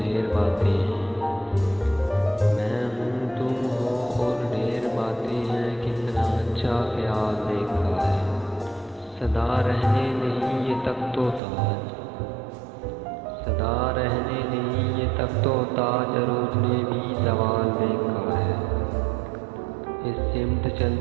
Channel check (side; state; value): left; drops out; at 11.4 s